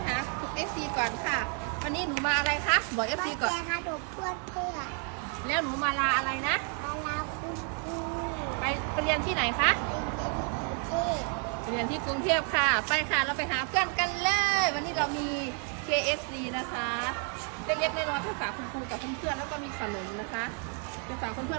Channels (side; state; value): left; quieter; 39.3 dB